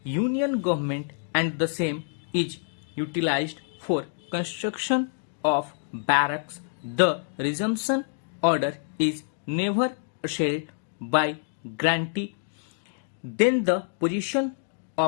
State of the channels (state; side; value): silent; right; digital silence